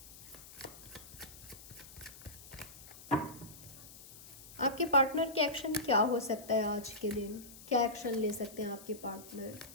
आपके पार्टनर के एक्शन क्या हो सकता है आज के दिन, क्या एक्शन ले सकते हैं आपके पार्टनर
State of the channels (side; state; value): left; noise; hiss, 17 dB below the sound